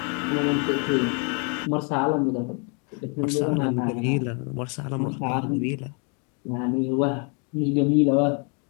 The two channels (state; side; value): quieter; right; 36.9 dB